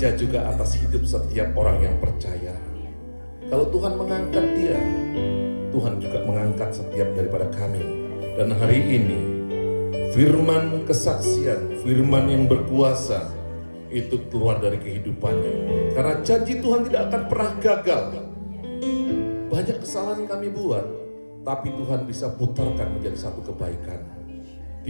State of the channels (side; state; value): both; inverted; correlation -1.00